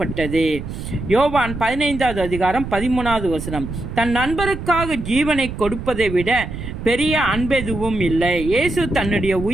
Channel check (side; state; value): right; noise; rumble, 8 dB below the sound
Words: யோவான் 15வது அதிகாரம் 13வது வசனம். தன் நண்பருக்காக ஜீவனை கொடுப்பதை விட பெரிய அன்பெதுவும் இல்லை. இயேசு தன்னுடைய